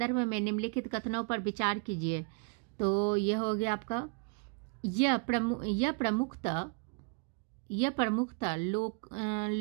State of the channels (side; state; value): left; quieter; 35.4 dB